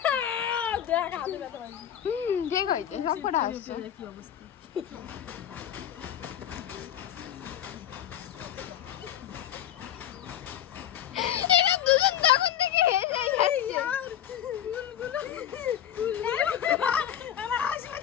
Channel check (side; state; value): right; quieter; 10.5 dB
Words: ঠিক হয়েছে, সব কটা হাসছে। কি অবস্থা দুজন তখন থেকে হেসে যাচ্ছে।